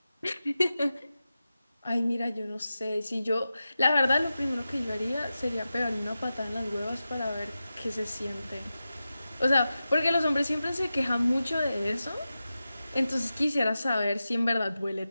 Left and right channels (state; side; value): inverted; both; correlation -0.93